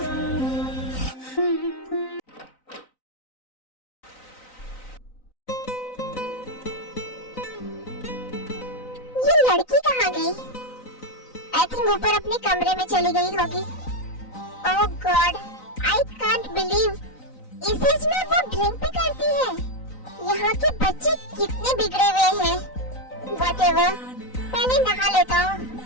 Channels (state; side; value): late; right; 3.9 ms